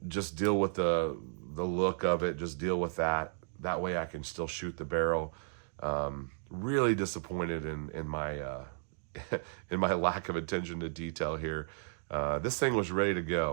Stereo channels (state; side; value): silent; left; 55 dB below the other